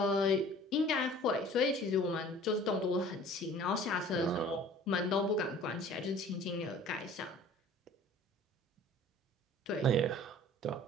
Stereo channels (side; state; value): both; normal; correlation 0.48